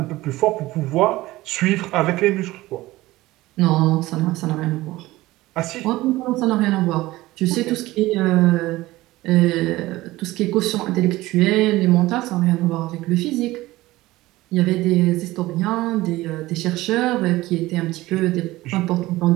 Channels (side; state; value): left; quieter; 18.1 dB